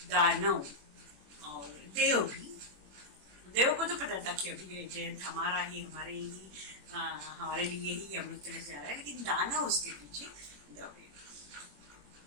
दानव और देव को तो पता था कि अभी जयंत हमारे लिए ही अमृत कलश जा रहा है, लेकिन दानव उसके पीछे दौड़े।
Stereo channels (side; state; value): left; late; 21 ms